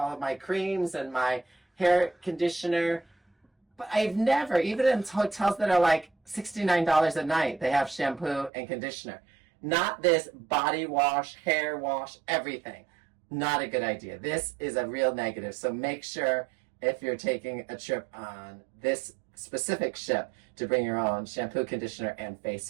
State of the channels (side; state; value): left; drops out; at 8.5 s